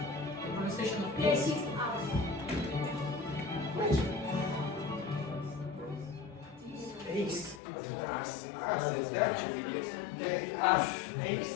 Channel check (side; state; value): right; drops out; at 7.6 s